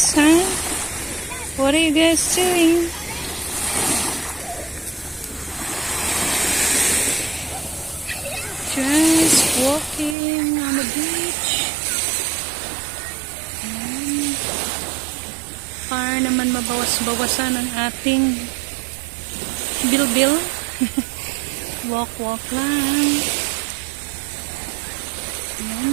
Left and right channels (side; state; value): left; drops out; at 10.2 s